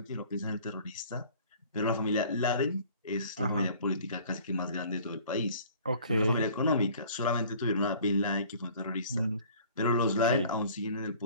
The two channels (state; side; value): inverted; both; correlation -0.51